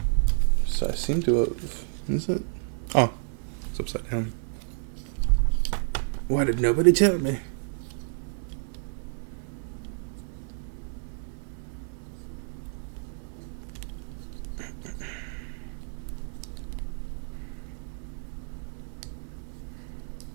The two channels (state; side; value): silent; left; digital silence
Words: So I seem to have... Is it? Oh, it's upside down. Why did nobody tell me?